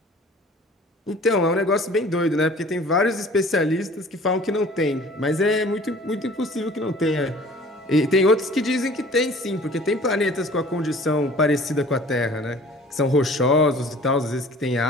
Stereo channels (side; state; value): both; normal; correlation 0.48